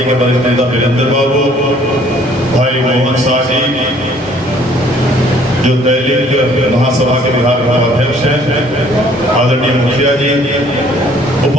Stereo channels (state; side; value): normal; both; correlation 0.59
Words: के वरिष्ठ नेता वीरेंद्र बाबू, भाई मोहन शाह जी जो दैनिक महासभा के बिहार का अध्यक्ष हैं, आदरणीय मुखिया जी,